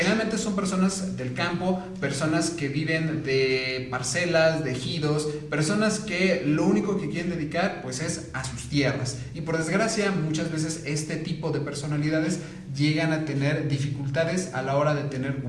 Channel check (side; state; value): both; identical; correlation 1.00